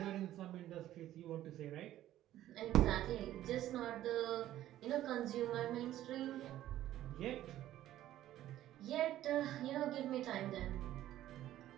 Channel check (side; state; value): left; quieter; 13.3 dB